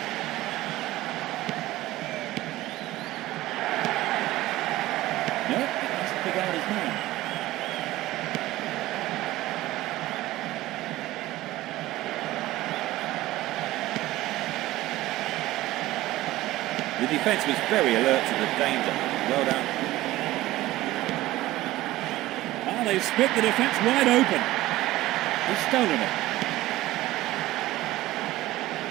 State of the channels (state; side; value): quieter; left; 16.8 dB